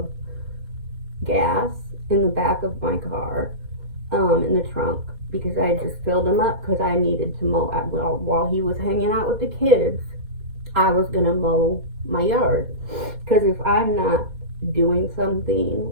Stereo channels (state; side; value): late; left; 4.2 ms